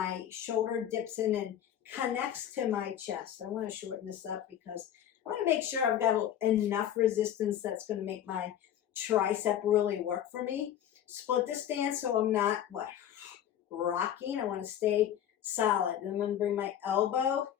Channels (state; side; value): quieter; right; 10.4 dB